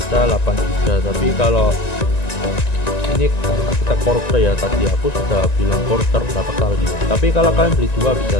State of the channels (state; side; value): late; right; 1.9 ms